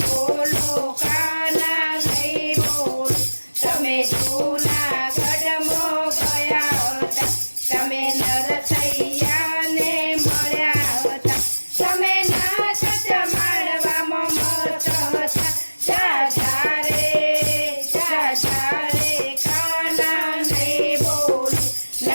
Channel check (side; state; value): both; inverted; correlation -1.00